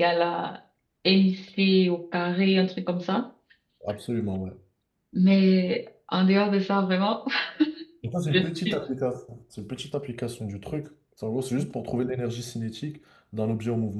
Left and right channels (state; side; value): identical; both; correlation 1.00